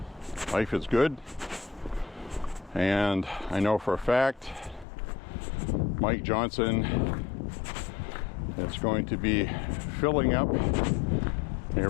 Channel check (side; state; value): right; drops out; at 4.9 s